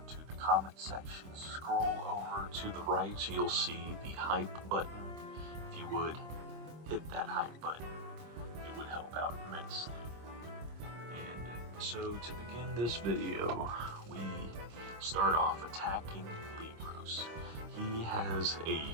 to the comment section, scroll over to the right, you'll see the hype button. If you would hit that hype button, it would help out immensely. And so to begin this video, we start off attacking LEECROS. He has a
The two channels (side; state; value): left; late; 26 ms